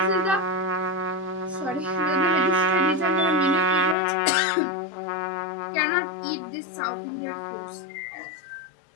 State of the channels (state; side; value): drops out; right; at 4.0 s